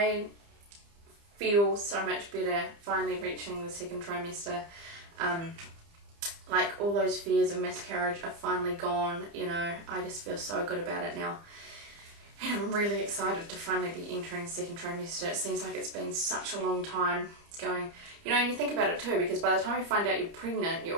feel so much better finally reaching the second trimester. Like all those fears of miscarriage are finally gone, you know. I just feel so good about it now. And I'm really excited to finally be entering the second trimester. It seems like it's been such a long time going. You know, and you think about it too, because by the time you find out you're pregnant,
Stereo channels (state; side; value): late; left; 30 ms